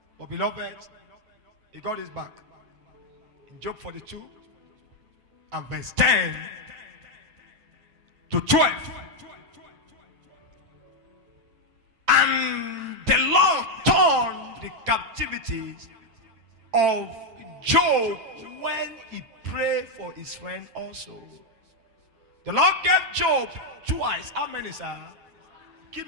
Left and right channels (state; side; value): late; left; 9.2 ms